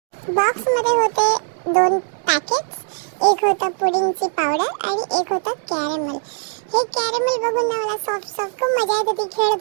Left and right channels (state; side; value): silent; left; 57 dB below the other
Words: बॉक्समध्ये होते 2 पॅकेट्स. एक होतं पुडिंगची पावडर आणि एक होतं कॅरमेल. हे कॅरमेल बघून ना मला सॉफ्ट खूप मजा येत होती,